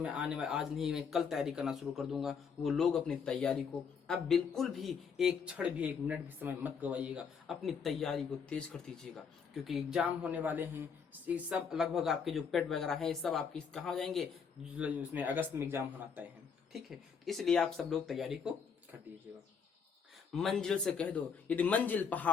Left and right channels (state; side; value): quieter; right; 6.3 dB